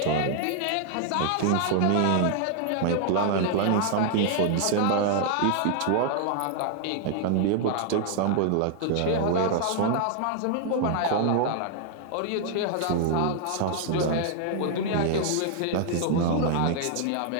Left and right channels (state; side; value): different; both; correlation 0.00